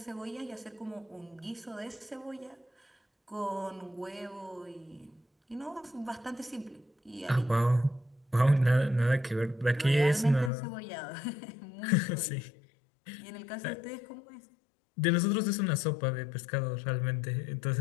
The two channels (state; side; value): drops out; right; at 10.5 s